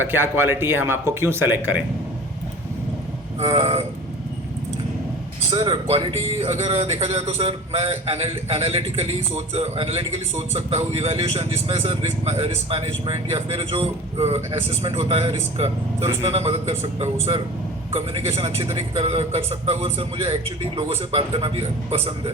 क्या क्वालिटी है, हम आपको क्यों सेलेक्ट करें? सर क्वालिटी अगर देखा जाए तो सर मैं एनालिटिकली सोच सकता हूँ, इवैल्यूएशन जिसमें सर रिस्क मैनेजमेंट या फिर जो असेसमेंट होता है रिस्क का, सर उसमें मैं मदद कर सकता हूँ। सर कम्युनिकेशन अच्छी तरीके कर सकता हूँ, और सर मुझे एक्चुअली लोगों से बात करना भी पसंद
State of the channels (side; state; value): both; normal; correlation 0.38